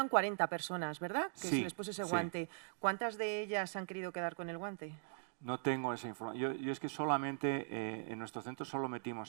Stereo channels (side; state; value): left; silent; digital silence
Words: 40 personas, ¿verdad? Que Sí, se les puso ese sí. guante. ¿Cuántas de ellas han querido quedar con el guante? No tengo esa información. Yo es que solamente en nuestro centro solo